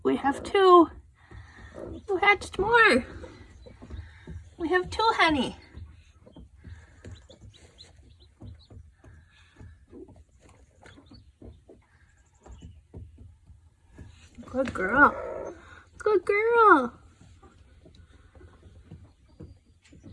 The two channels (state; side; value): identical; both; correlation 1.00